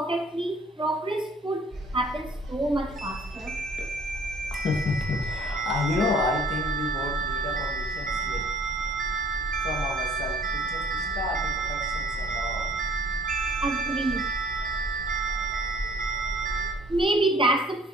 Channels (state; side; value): normal; both; correlation 0.54